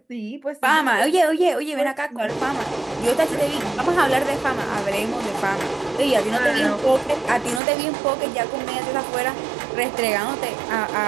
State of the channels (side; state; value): left; drops out; at 7.6 s